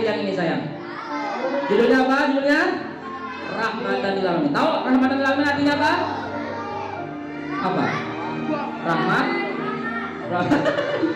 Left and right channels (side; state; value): both; identical; correlation 1.00